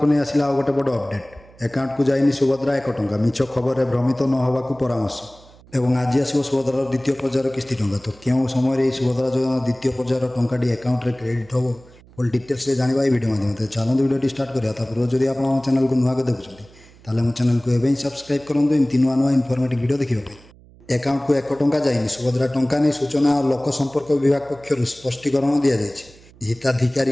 नहीं आसला आ गोटे बड़ अपडेट अकाउंट को जाइनी सुभद्रा 1 टंका मिछ खबर में भ्रमित न होगा परामर्श एवं आज आसो सुभद्रार द्वितीय पर्यायर किस्ती टंका तो क्यों समय सुभद्रा योजना द्वितीय पर्यायर टंकाटी अकाउंट में क्रेडिट हम फुल डिटेल्स जाना भिडियो माध्यम चलते भिडियो स्टार्ट करा पूर्व जब आप चैनल को नुआ देखुं ताले मो चैनल को एवं सब्सक्राइब करूँ एमती नुआ नुआ इनफॉर्मेटिव वीडियो देखा अकाउंट को 1 टंका जाइनी सुभद्रा टंका नहीं सूचना और लोक संपर्क विभाग पक्षर स्पष्टीकरण दि जाए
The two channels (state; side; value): noise; right; hum, 25 dB below the sound